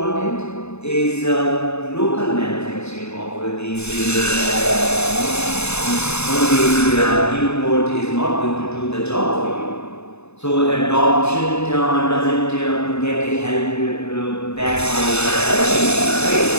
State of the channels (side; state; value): right; late; 0.80 ms